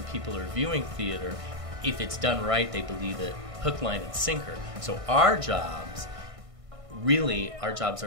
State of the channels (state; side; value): late; left; 1.6 ms